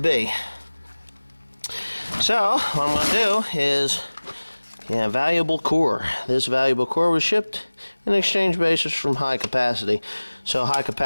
So what I'm gonna do is, yeah, valuable core. This valuable core was shipped in exchange basis from High Capacity. So High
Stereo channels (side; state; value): both; inverted; correlation -1.00